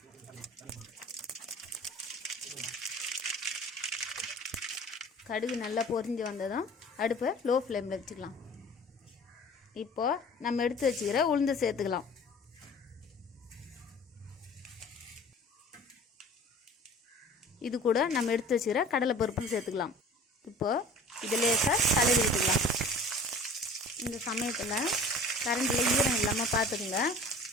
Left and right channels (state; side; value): normal; both; correlation 0.44